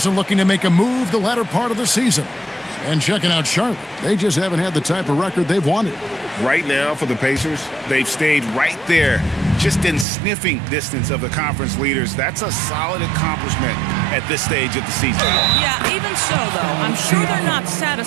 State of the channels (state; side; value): drops out; left; at 10.1 s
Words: and looking to make a move the latter part of the season. And checking out Charlotte. They just haven't had the type of record they've wanted. Right now for the Pacers, they've stayed right there, just in sniffing distance of the conference leaders. That's a solid accomplishment at this stage of the season. Yeah, even so, though, I'm sure they're not